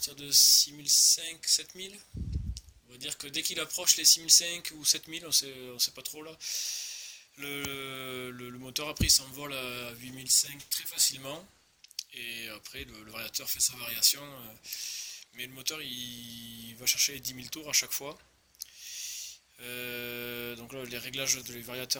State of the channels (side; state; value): both; identical; correlation 1.00